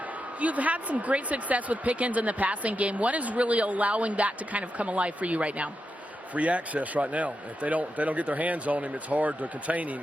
You've had some great success with Pickens in the passing game. What is really allowing that to kind of come alive for you right now? Free access right now. If they don't get their hands on him, it's hard to contain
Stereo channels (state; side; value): normal; both; correlation 0.87